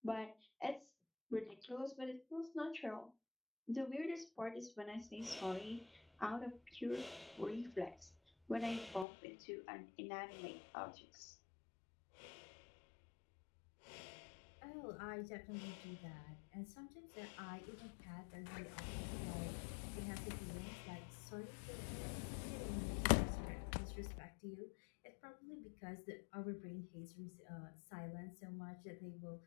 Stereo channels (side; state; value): right; drops out; at 9.1 s